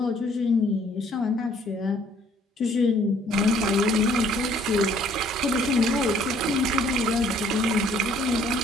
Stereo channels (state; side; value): normal; both; correlation 0.60